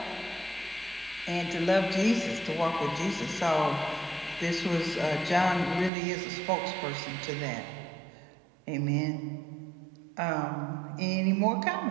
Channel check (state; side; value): drops out; left; at 5.9 s